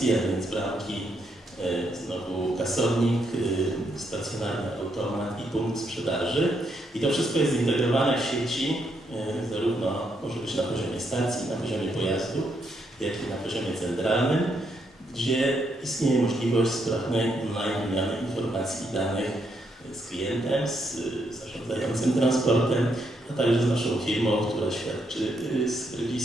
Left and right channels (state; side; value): normal; both; correlation 0.77